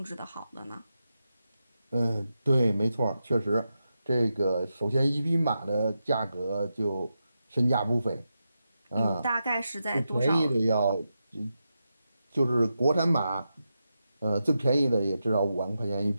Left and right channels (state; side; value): inverted; both; correlation -0.88